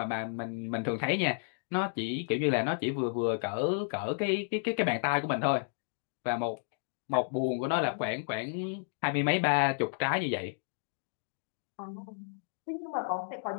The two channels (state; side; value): silent; right; digital silence